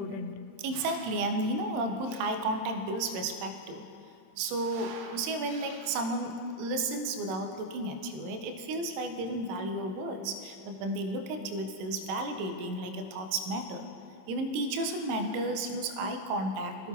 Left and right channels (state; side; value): late; left; 26 ms